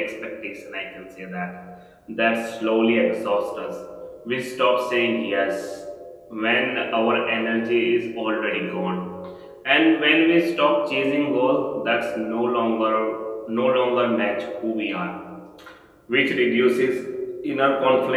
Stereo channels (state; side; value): identical; both; correlation 1.00